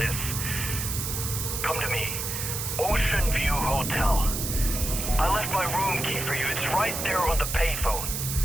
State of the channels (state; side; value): noise; right; hiss, 3 dB below the sound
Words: Come to me. Ocean View Hotel. I left my room key for you. It's right there on the payphone.